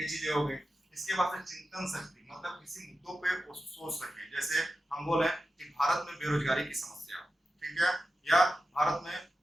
चीजें हो गई। इसके बाद से चिंतन शक्ति, मतलब किसी मुद्दों पे वो सोच सके, जैसे हम बोले कि भारत में बेरोजगारी की समस्या, ठीक है, या भारत में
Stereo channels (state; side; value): normal; both; correlation 0.93